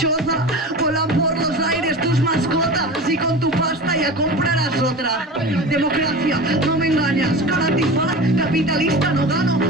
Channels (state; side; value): normal; both; correlation 0.32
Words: volan por los aires tus mascotas y con tu pasta ya comprarás otra. Democracia, no me engañas, cara antifaz, capitalista, no gano,